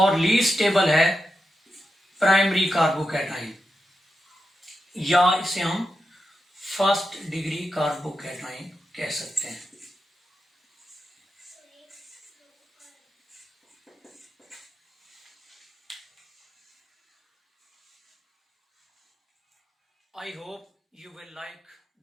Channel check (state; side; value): normal; both; correlation 0.88